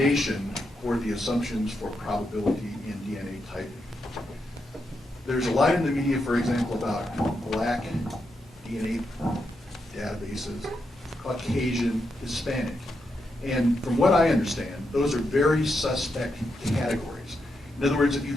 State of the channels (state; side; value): normal; both; correlation 0.84